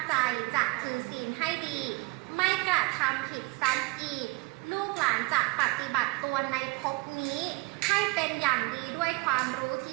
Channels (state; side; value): quieter; left; 28.0 dB